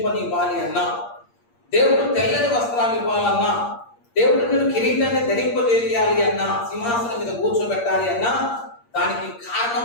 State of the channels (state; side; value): late; right; 8.6 ms